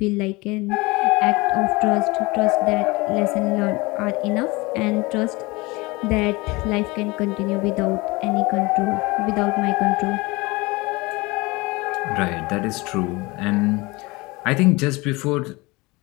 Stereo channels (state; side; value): quieter; right; 23.7 dB